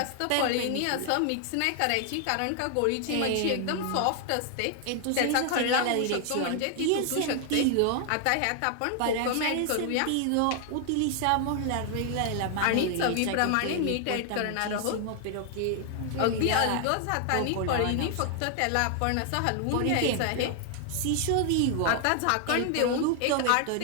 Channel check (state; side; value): different; both; correlation 0.00